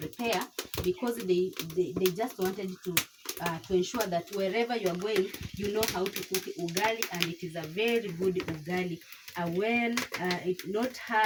because they just wanted to ensure that wherever you are going, you know how to cook ugali, and it is a very good ugali. Well, it's not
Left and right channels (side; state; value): both; identical; correlation 1.00